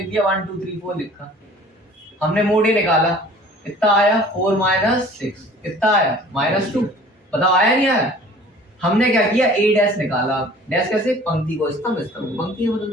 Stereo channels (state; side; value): normal; both; correlation 0.48